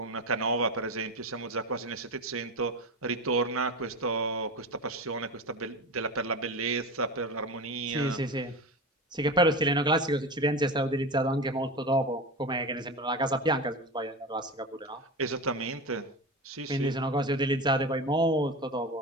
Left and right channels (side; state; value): both; normal; correlation 0.25